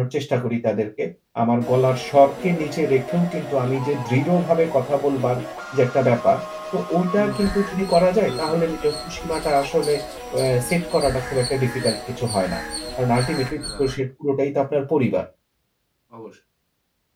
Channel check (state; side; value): identical; both; correlation 1.00